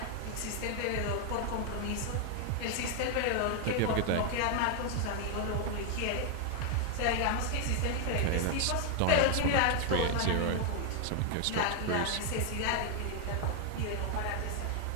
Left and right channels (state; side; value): different; both; correlation 0.01